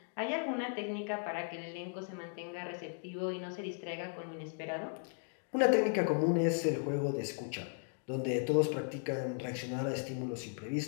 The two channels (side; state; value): right; silent; 53 dB below the other